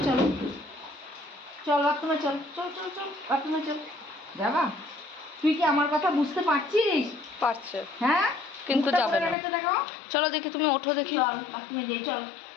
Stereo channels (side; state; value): right; drops out; at 9.3 s